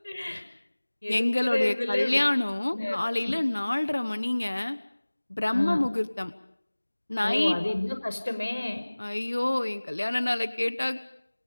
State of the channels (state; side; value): inverted; both; correlation -1.00